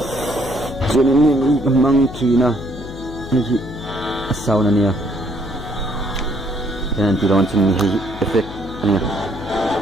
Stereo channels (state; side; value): noise; left; hum, 12 dB below the sound